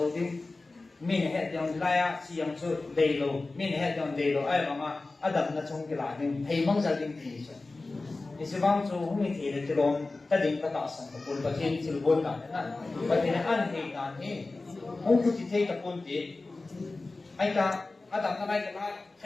đi mình hệ dòng lai chỉ dòng số đầy lô mình hệ dòng đầy lô ai mà Adam nó trong cái lại nên thấy mong gia đình thì sao thì sẽ vang số không mình thì cái lồng ta định cái tạo sản của quân thiên chỉ quân cả đấy và thì ăn thì ăn thì không cứ chỉ thấy cái quân thì ai cả Adam nó cái lại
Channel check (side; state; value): right; quieter; 3.4 dB